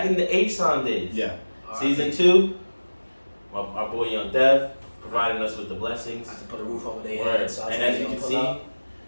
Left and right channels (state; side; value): inverted; both; correlation -1.00